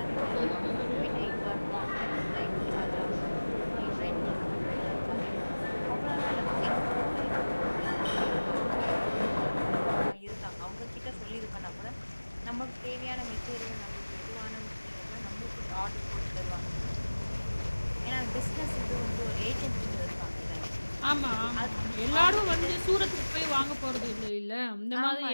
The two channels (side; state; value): both; inverted; correlation -1.00